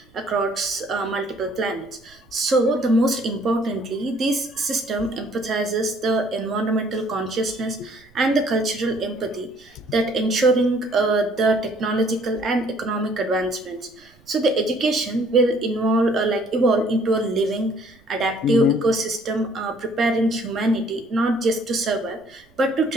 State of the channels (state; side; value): noise; right; rumble, 30 dB below the sound